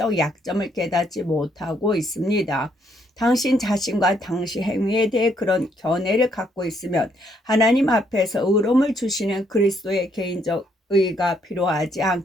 약점을 깨닫지 못하고 있습니다. 당신 자신과 당신 행위에 대해 그런 견해를 갖고 있으면 하나님 앞에서 의로움을 주시는 그리스도의 개인적 의가 필요하지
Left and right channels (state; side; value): normal; both; correlation 0.71